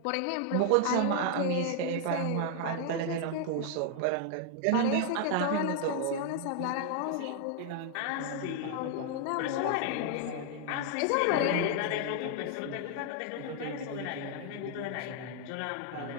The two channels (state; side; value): different; both; correlation 0.00